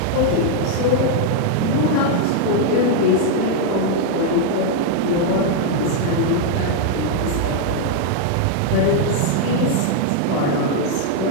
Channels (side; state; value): both; different; correlation 0.00